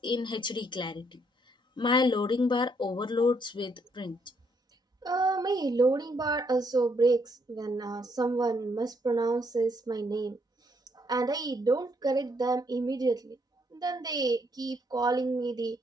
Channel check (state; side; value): normal; both; correlation 0.72